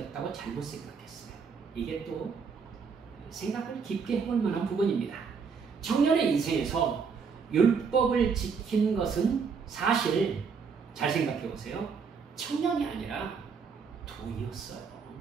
잘못 생각했어요. 이게 또 생각을 깊게 해볼 만한 부분입니다. 청년의 인생에서 율법을 지킨 것은 사실 잘 생각해 보세요. 청년이 아니라 돈이었어요.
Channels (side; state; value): left; quieter; 5.7 dB